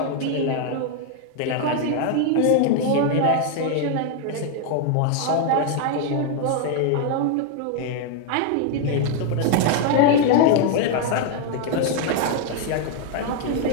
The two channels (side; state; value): both; different; correlation 0.00